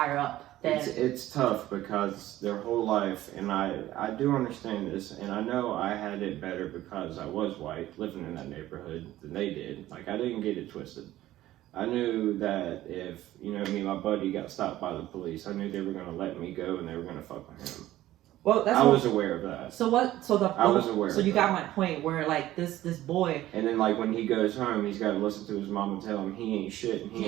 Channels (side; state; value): left; quieter; 14.8 dB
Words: up. It's tough because their whole life, and I do understand this, and I know I had it better because I was white, living in that neighborhood than they did. Like, I didn't get it twisted. I knew that if, me and my buddy got stopped by the police, I knew they were going to let me go and they were going to fuck with him. Well, I was aware of that. So what? I was aware. So you got my point where like this boy. And then like when he goes home, he's got to listen to his mom and tell him he ain't shit and he